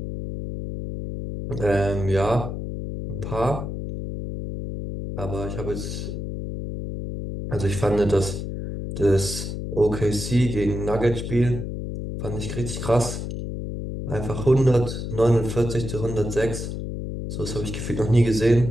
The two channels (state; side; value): noise; left; hum, 5 dB below the sound